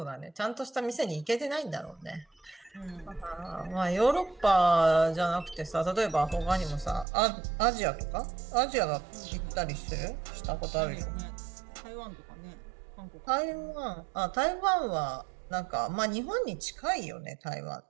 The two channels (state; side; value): drops out; left; at 7.1 s